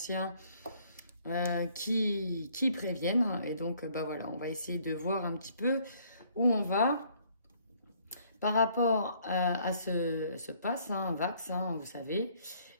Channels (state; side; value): inverted; both; correlation -0.63